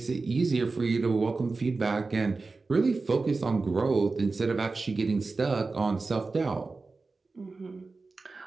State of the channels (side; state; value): left; quieter; 3.9 dB